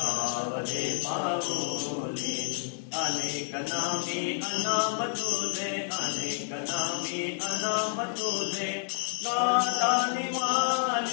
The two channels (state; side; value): silent; right; digital silence